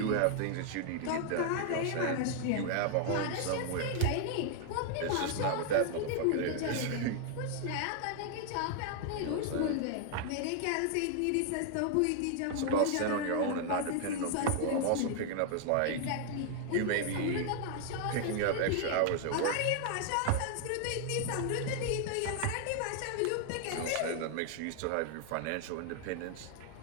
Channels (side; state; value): both; different; correlation 0.00